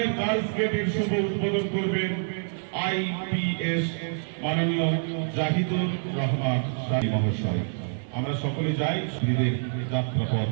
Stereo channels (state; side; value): silent; left; digital silence